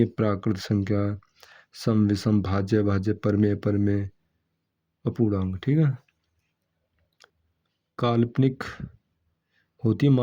प्राकृत संख्या, सम, विषम, भाज्य, भाज्य, परमेय, परमेय, अपूर्णांक। ठीक है, काल्पनिक होती है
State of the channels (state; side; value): identical; both; correlation 1.00